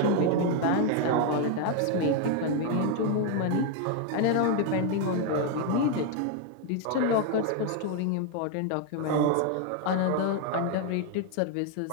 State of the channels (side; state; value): both; different; correlation 0.01